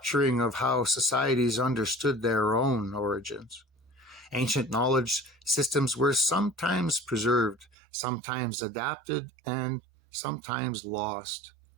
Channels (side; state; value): left; drops out; at 7.7 s